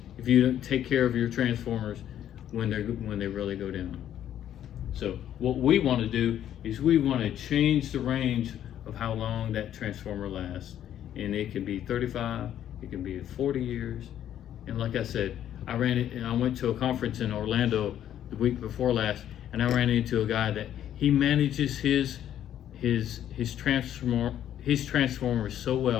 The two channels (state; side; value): quieter; right; 10.9 dB